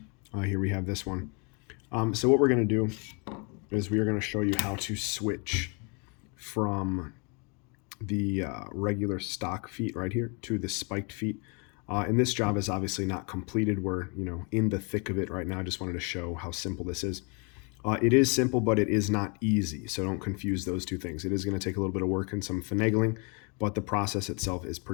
Here we have this one. So what we're going to do is we are going to show you how to switch from the regular stock feet right here to the spiked feet. And this job is obviously not completed. We're in the thick of it right now. I just wanted to show how simple this is. It is simple, but it is not easy. So don't confuse those two things. It is going to take a little bit of work and some finagling, but the process itself is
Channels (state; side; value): quieter; right; 33.7 dB